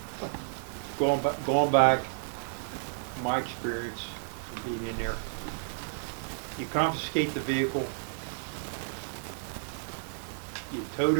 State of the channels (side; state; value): left; silent; 57 dB below the other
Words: Going back, my experience of being in there, you confiscate the vehicle, you tow